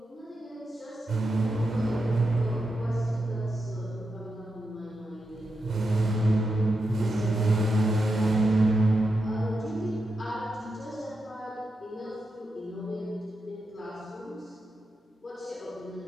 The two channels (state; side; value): normal; both; correlation 0.87